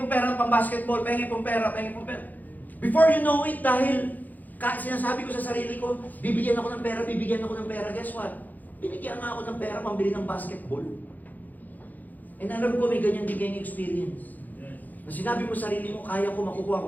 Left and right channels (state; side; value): late; right; 0.083 ms